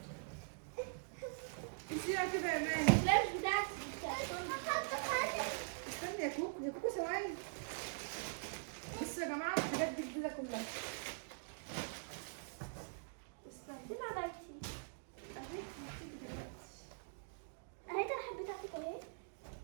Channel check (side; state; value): left; silent; digital silence